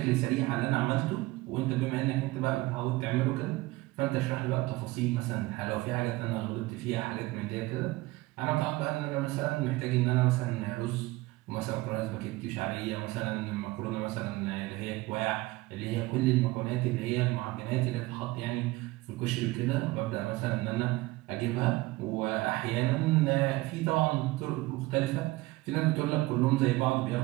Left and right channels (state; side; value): quieter; left; 20.1 dB